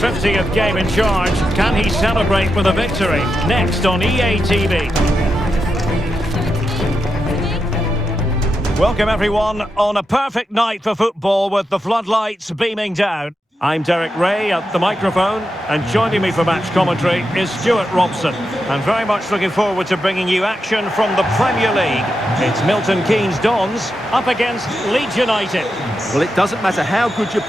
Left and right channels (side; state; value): both; normal; correlation 0.87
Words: game in charge. Can he celebrate with a victory? Next on EA TV. Welcome everyone on a perfect night for football with the floodlights beaming down. I'm Derek Ray at the microphone, and joining me for match commentary is Stuart Robson. And very much looking forward to bringing you action from the Premier League. It's Milton Keynes Dons up against Leeds United. Well, it doesn't matter how good your